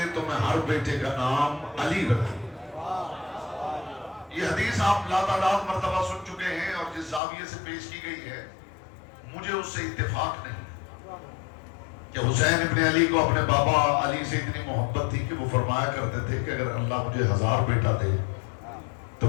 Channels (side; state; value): right; drops out; at 7.2 s